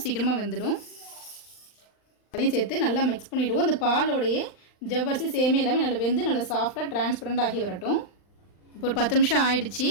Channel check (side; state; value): right; late; 39 ms